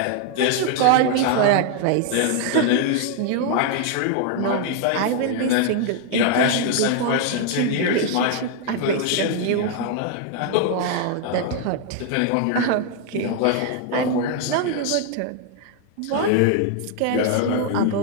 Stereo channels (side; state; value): both; different; correlation 0.00